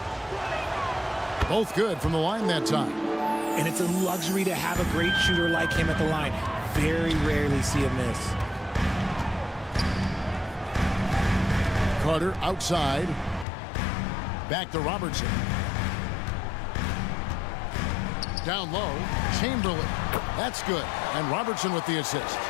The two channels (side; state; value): right; drops out; at 13.5 s